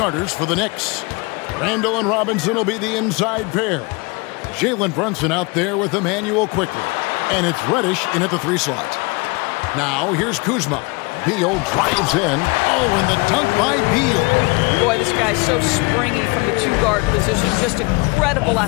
for the Knicks. Randall and Robinson will be the inside pair. Jalen Brunson out there with Emmanuel quickly. And it's Reddish in at the 3 slot. Now here's Kuzma. Beal drives in. Oh, and the dunk by Beal. Boy, this guy's so springy from the 2-guard position. Just incredible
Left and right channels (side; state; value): right; quieter; 27.9 dB